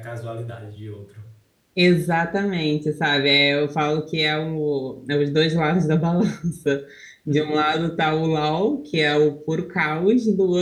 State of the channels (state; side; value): identical; both; correlation 1.00